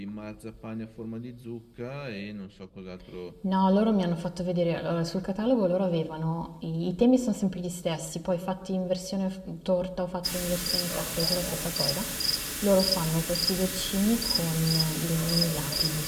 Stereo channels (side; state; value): both; identical; correlation 1.00